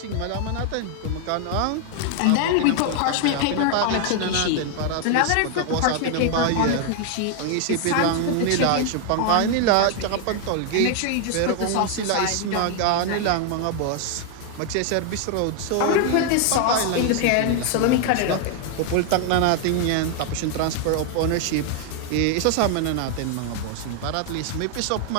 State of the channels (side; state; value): both; different; correlation 0.00